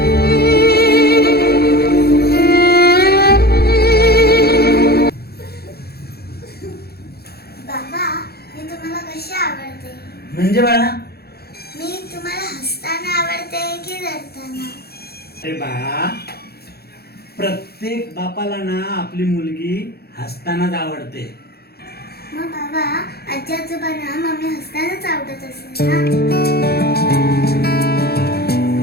बाबा, मी तुम्हाला कशी आवडते? म्हणजे बाळा, मी तुम्हाला हसताना आवडते की रडताना? अरे बाळा, प्रत्येक बापाला ना आपली मुलगी हसतानाच आवडते. मग बाबा, आजी आजोबांना मम्मी हसतानाच आवडत असेल ना?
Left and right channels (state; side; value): late; right; 0.46 ms